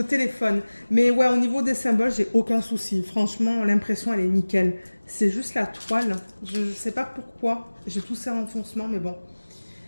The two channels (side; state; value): both; inverted; correlation -1.00